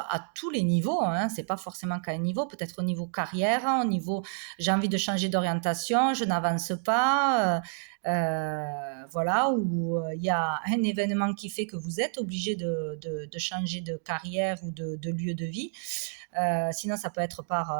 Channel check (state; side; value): silent; left; digital silence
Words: tous les niveaux, hein, c'est pas forcément qu'à un niveau, peut-être au niveau carrière, au niveau j'ai envie de changer d'orientation, je n'avance pas, voilà, ou il y a un événement qui fait que vous êtes obligé de changer de carrière ou de lieu de vie. Sinon, ça peut être